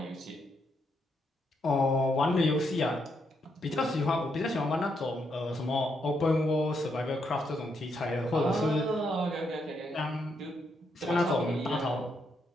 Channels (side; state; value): both; normal; correlation 0.78